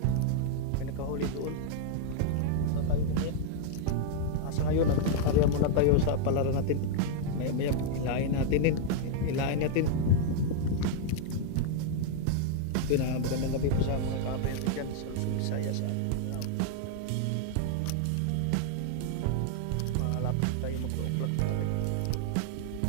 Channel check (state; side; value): different; both; correlation 0.00